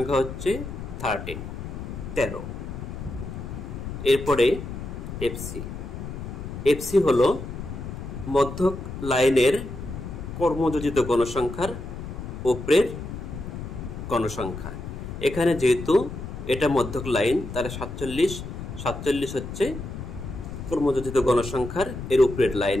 হচ্ছে 13। এরপরে FC হলো মধ্যক লাইনের কর্মযোজিত গণসংখ্যার উপরের গণসংখ্যা। এখানে যেহেতু এটা মধ্যক লাইন, তাহলে 47 হচ্ছে কর্মযোজিত গণসংখ্যার এর উপরের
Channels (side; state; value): left; noise; rumble, 8 dB below the sound